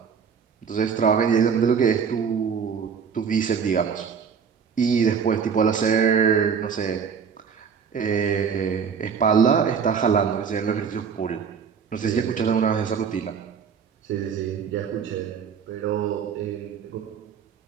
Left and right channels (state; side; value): quieter; left; 6.7 dB